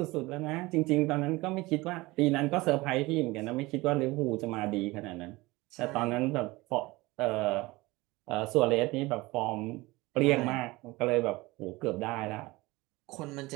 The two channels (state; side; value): quieter; left; 21.4 dB